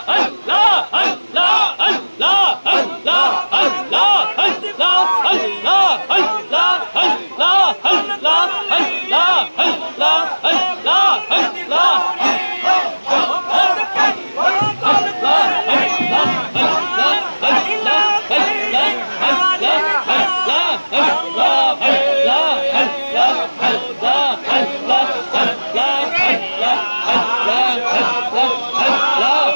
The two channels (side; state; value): both; inverted; correlation -1.00